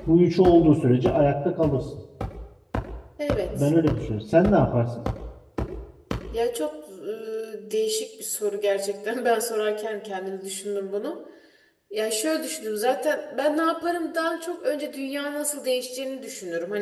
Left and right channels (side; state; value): both; identical; correlation 1.00